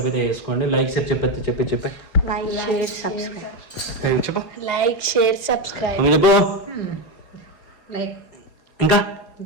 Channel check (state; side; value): late; right; 4.9 ms